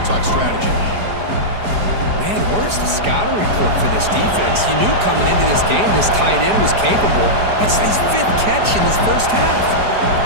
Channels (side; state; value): left; late; 4.9 ms